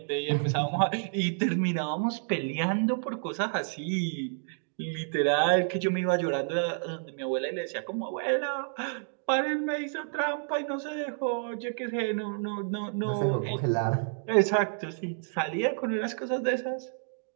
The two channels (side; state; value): left; silent; digital silence